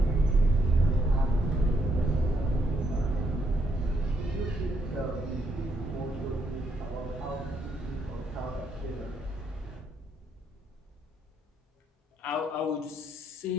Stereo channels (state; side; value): normal; both; correlation 0.75